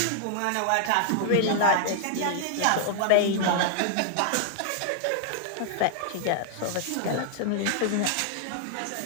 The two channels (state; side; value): different; both; correlation -0.01